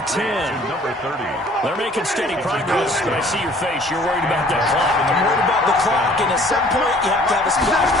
10. Number 30. They're making steady progress, but I see your face. You're worried about that clock. I'm worried about the clock, and at some point, you have to have a splash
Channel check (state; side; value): normal; both; correlation 0.54